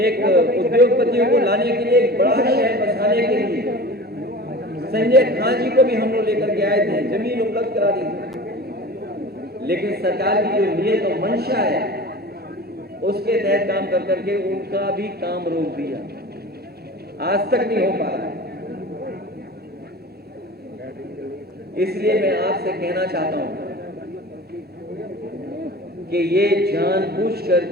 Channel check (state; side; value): normal; both; correlation 0.37